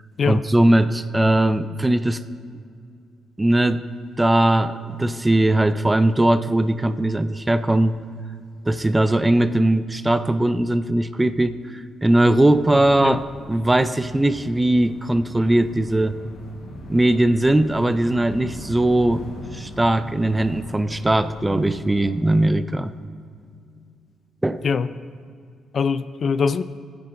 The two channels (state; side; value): normal; both; correlation 0.96